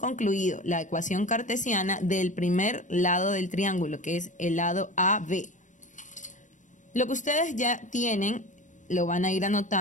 la ecuación cartesiana del primer lado del triángulo, que es el lado AB. Lo que ustedes ya tienen lo van a ir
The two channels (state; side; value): late; right; 0.36 ms